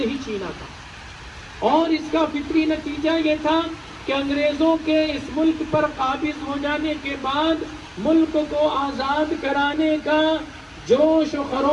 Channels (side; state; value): both; identical; correlation 1.00